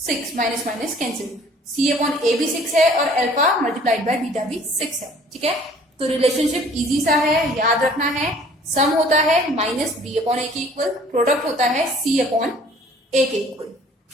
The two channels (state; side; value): normal; both; correlation 0.53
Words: minus minus cancel, c/a भी 6 है और अल्फा मल्टीप्लाइड बाय बीटा भी 6 है, ठीक है। तो रिलेशनशिप इजी सा है, याद रखना है। सम होता है -b/a के इक्वल, प्रोडक्ट होता है c/a के इक्वल।